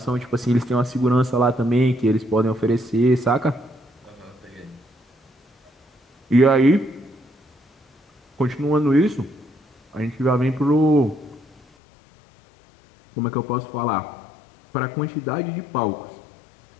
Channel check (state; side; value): drops out; right; at 11.6 s